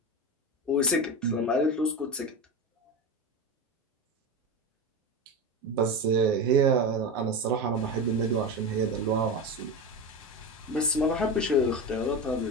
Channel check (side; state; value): both; normal; correlation 0.22